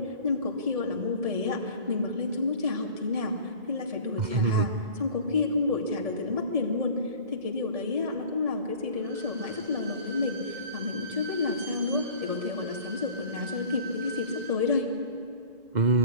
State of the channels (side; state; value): left; late; 1.7 ms